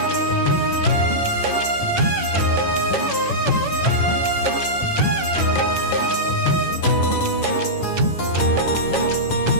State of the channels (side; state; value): right; late; 10 ms